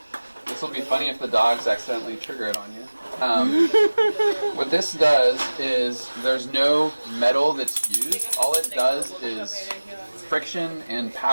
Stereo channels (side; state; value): both; inverted; correlation -1.00